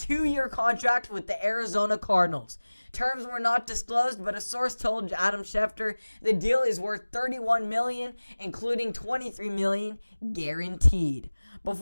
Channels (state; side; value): inverted; both; correlation -1.00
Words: contract with the Arizona Cardinals. Terms were not disclosed, but a source told Adam Schefter the deal is worth $31 million, including $23 million guaranteed.